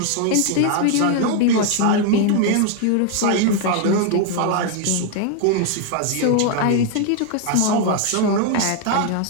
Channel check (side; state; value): both; different; correlation 0.00